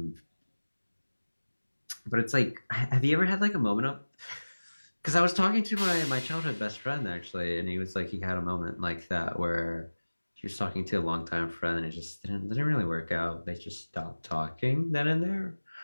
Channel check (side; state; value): both; inverted; correlation -1.00